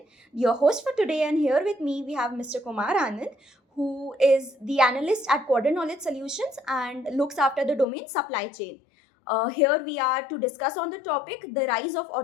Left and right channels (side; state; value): right; drops out; at 7.9 s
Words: your host for today, and here with me we have Mr. Kumar Anand, who is the analyst at Quadrant Knowledge Solutions and looks after the domain supply chain. Here we are to discuss on the topic the rise of